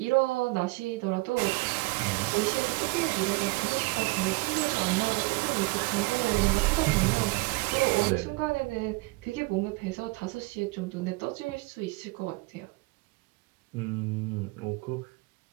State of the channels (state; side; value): quieter; left; 24.6 dB